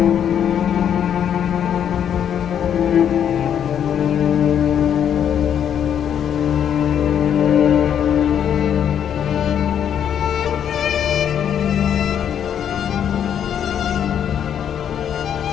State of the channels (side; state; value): right; quieter; 9.0 dB